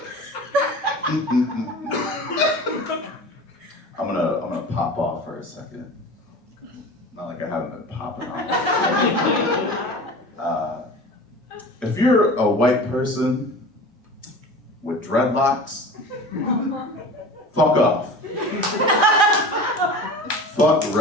I'm gonna pop off for a second. Not like I haven't been popping off. If you're a white person with dreadlocks, fuck off. Fuck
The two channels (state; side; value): normal; both; correlation 0.36